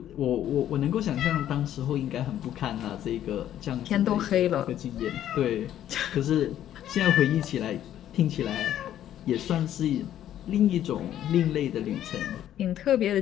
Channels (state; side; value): quieter; right; 11.4 dB